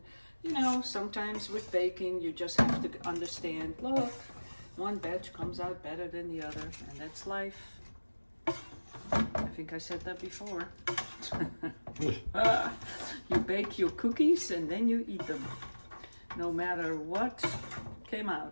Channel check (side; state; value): both; inverted; correlation -1.00